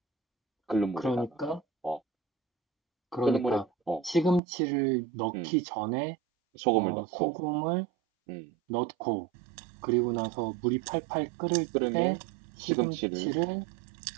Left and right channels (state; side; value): drops out; left; at 4.4 s